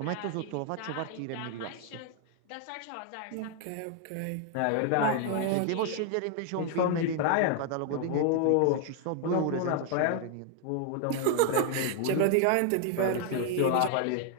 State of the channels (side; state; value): both; different; correlation 0.00